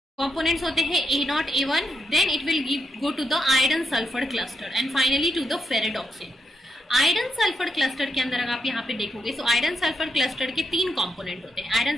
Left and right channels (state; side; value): normal; both; correlation 0.82